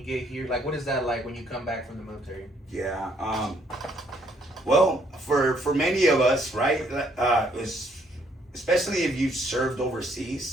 get here? Like, what is that like when you come back from the military? Yeah. Well, for many of us, right, especially if you've served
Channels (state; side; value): normal; both; correlation 0.68